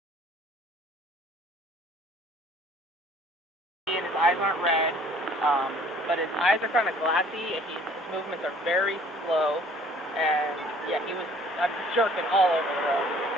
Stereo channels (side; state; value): both; normal; correlation 0.55